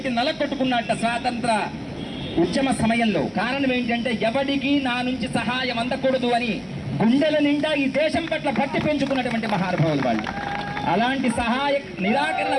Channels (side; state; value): both; identical; correlation 1.00